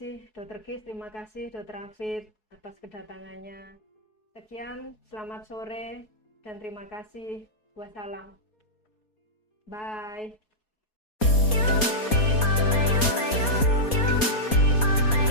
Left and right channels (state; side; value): late; right; 4.3 ms